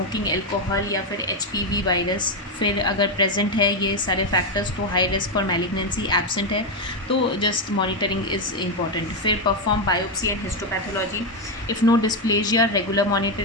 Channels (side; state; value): both; normal; correlation 0.06